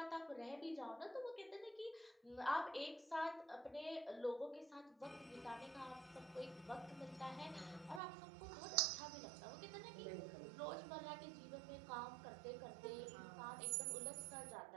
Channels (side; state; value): left; drops out; at 8.0 s